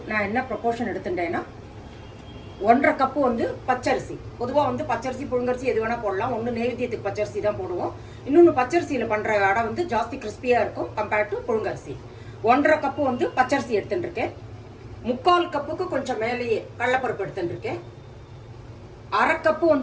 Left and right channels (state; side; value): identical; both; correlation 1.00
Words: நான் என்ன ப்ரொபோர்ஷன் எடுத்துட்டேன்னா 1.5 கப்பு வந்து பச்சரிசி. பொதுவாக வந்து பச்சரிசி புழுங்கரிசி எது வேணால் போடலாம். ஒன்று நெய்வேத்தியத்துக்கு பச்சரிசி தான் போடுவோம். இன்னொன்று பச்சரிசியில் பண்ணுற அடை வந்து ஜாஸ்தி கிறிஸ்பியாக இருக்கும் கம்பேர்ட் டு புழுங்கரிசி. 1.5 கப்பு வந்து பச்சரிசி எடுத்துட்டு இருக்கேன். 3/4 கப்புக்கு கொஞ்சம் மேலேயே கடலைப்பருப்பு எடுத்துட்டு இருக்கேன். 1/2 கப்பு